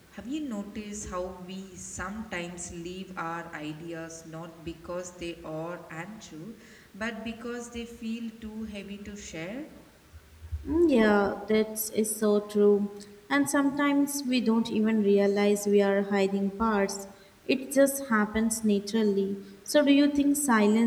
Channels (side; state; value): both; identical; correlation 1.00